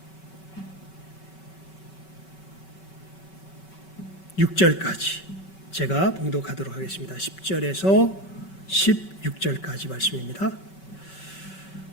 16절까지) 제가 봉독하도록 하겠습니다. 10절에서 16절까지 말씀입니다.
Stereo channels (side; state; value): right; late; 5.3 ms